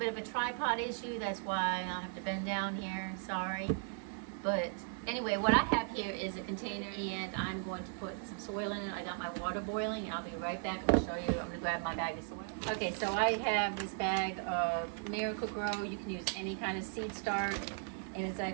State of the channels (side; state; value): left; silent; 53 dB below the other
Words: of a tripod issue. That's why I'll have to bend down here, sorry. But anyway, what I have here is a container, and I'm going to put some soil in it. I got my water boiling. I'll be right back. I'm gonna show you. I'm gonna grab my bag of soil. Okay, so I have this bag of Miracle-Gro. You can use any kind of seed start, and it's